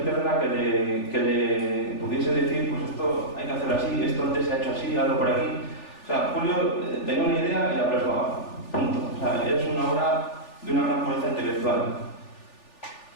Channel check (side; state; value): right; late; 3.4 ms